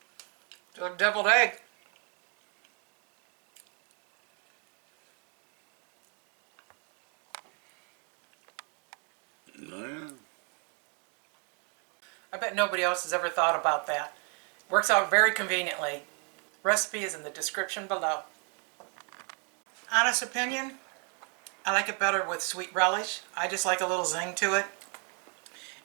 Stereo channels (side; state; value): left; quieter; 36.6 dB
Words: a deviled egg. I bet nobody else has ever thought about that. Works out very conveniently. Recipe is in the description below. Honest opinion, I like it better with sweet relish. I just like a little zing to it.